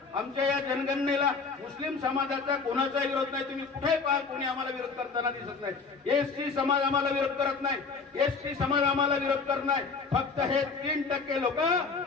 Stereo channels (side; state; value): right; quieter; 4.7 dB